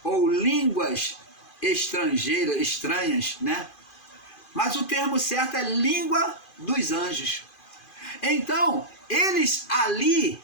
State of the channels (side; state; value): right; late; 2.5 ms